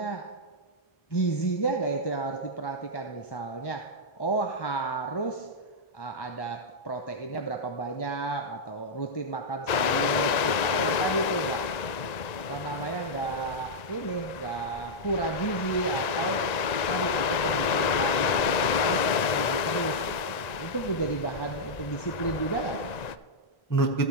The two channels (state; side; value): late; right; 1.8 ms